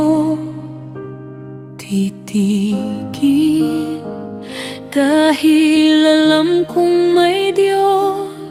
titigil, dahil alam kong may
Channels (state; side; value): identical; both; correlation 1.00